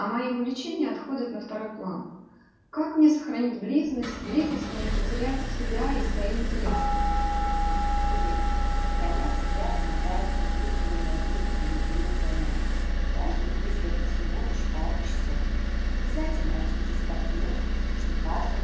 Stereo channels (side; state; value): both; identical; correlation 1.00